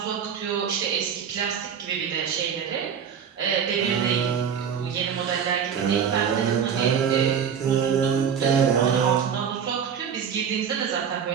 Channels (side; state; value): left; quieter; 7.6 dB